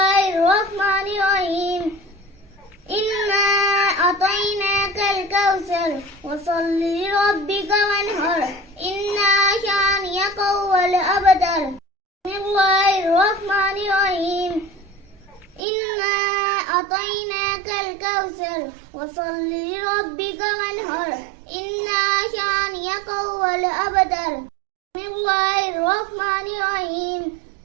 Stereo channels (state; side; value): drops out; left; at 15.6 s